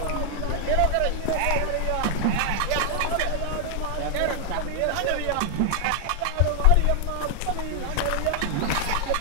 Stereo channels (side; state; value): both; different; correlation 0.00